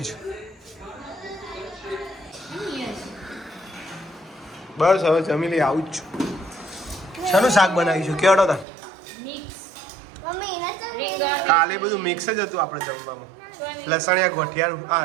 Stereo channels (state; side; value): drops out; left; at 8.7 s